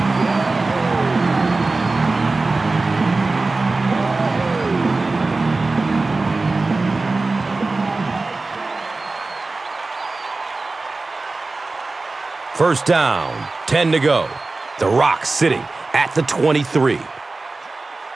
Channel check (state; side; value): quieter; left; 3.5 dB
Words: First down, 10 to go. The Rock sitting at the 23.